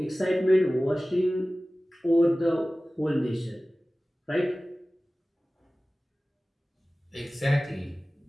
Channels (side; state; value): both; normal; correlation 0.97